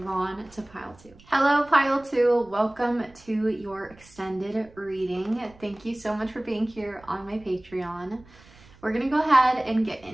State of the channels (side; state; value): right; noise; rumble, 25 dB below the sound